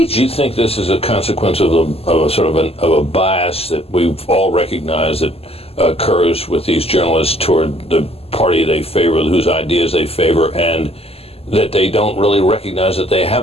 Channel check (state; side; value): late; right; 0.29 ms